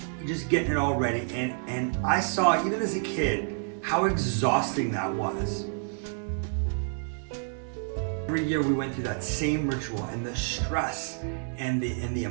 just getting it all ready. And I saw, even as a kid, how exhausting that was. Every year we went through that same ritual, and the stress and the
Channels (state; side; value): silent; left; 56 dB below the other